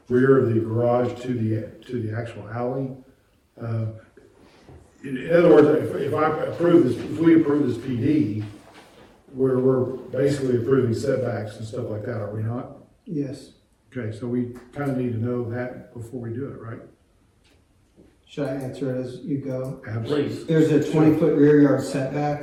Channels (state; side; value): identical; both; correlation 1.00